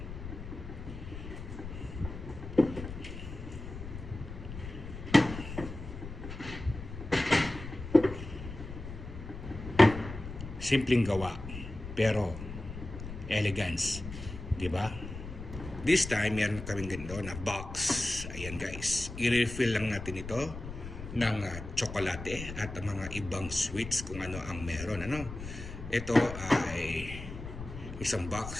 Simpleng gawa pero elegance, di ba? This time meron kaming ganito na box. Ayan guys, i-refill lang natin ito ng tsokolate at mga ibang sweets kung ano ang meron, ano. Ito ay isang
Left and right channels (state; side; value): noise; left; rumble, 10 dB below the sound